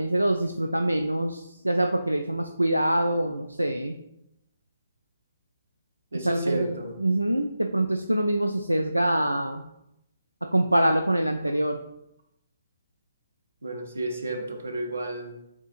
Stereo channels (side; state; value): both; inverted; correlation -0.92